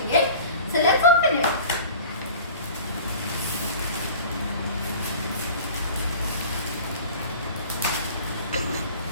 it. So let's open it.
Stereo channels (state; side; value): inverted; both; correlation -0.43